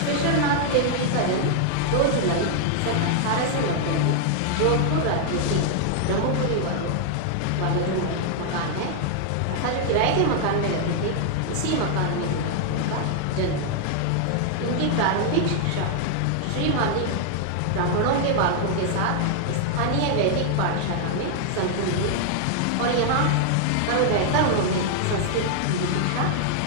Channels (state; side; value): different; both; correlation 0.00